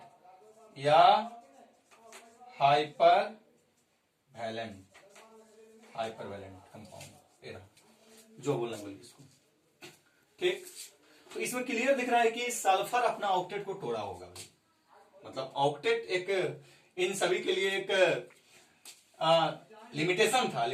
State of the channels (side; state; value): both; identical; correlation 1.00